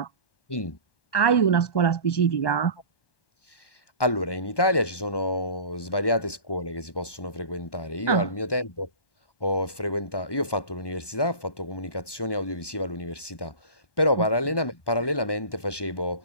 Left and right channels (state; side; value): late; right; 1.2 ms